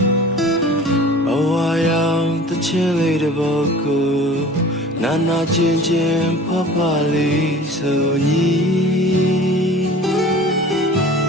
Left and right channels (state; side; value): normal; both; correlation 0.43